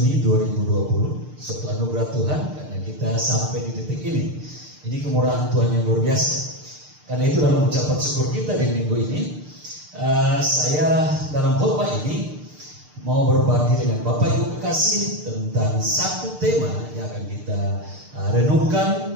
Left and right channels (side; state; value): left; late; 6.7 ms